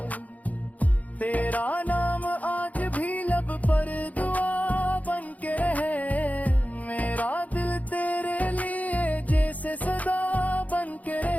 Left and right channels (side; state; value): right; late; 0.074 ms